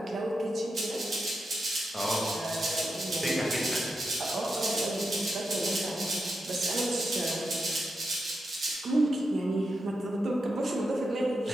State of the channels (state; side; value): normal; both; correlation 0.87